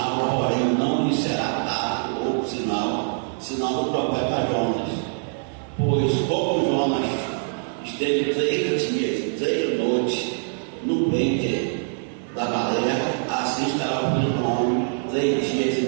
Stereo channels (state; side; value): silent; left; digital silence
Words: porém não lhe será dado outro sinal do profeta Jonas. Pois como Jonas esteve 3 dias e 3 noites no ventre da baleia, assim estará o Filho do Homem 3 dias